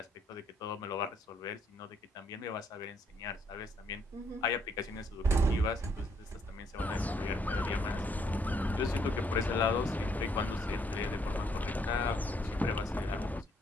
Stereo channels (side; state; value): both; normal; correlation 0.70